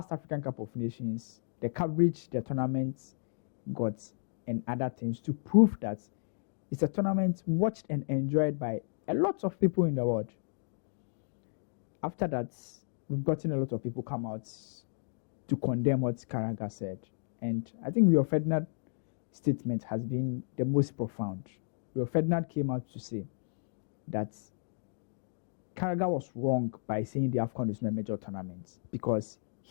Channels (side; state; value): right; silent; digital silence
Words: African Cup of Nations, the coverage the tournament got and other things to prove that it's a tournament watched and enjoyed by a lot of people in the world. After that, we've gotten a lot of people come out to condemn what Carragher said. And I think Rio Ferdinand's statement has been the most profound. Rio Ferdinand came out to say that Carragher was wrong by saying the AFCON is not a major tournament because